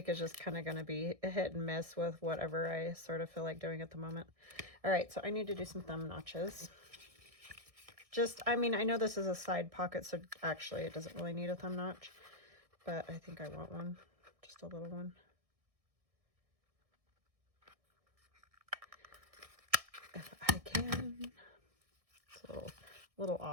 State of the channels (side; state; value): left; late; 1.6 ms